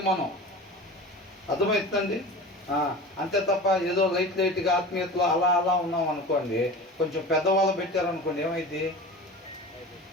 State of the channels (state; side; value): normal; both; correlation 0.34